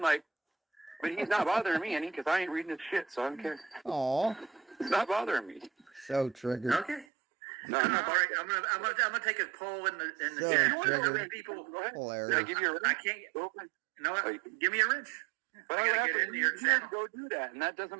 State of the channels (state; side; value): drops out; left; at 7.1 s